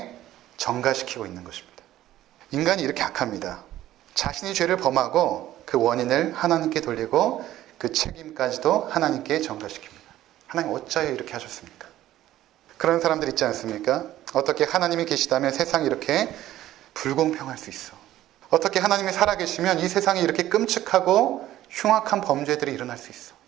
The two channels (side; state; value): left; quieter; 13.8 dB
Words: 전가시키고 있는 것입니다. 인간이 이렇게 악합니다. 자신이 죄를 범하고 그 원인을 하나님께 돌리고 그 책임까지도 하나님께 전가시킵니다. 하나님 어찌하여 이렇게 하셨습니까? 그런 사람들 있지 않습니까? 어떻게 하나님이 계시다면 세상이 이렇게 불공평할 수 있어. 어떻게 하나님이 살아계시면 이 세상에 이렇게 끔찍하고 흉악한 범죄들이 일어날 수 있어.